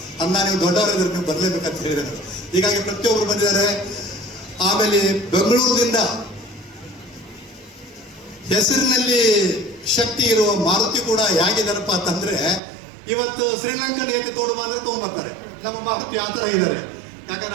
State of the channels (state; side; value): drops out; left; at 12.6 s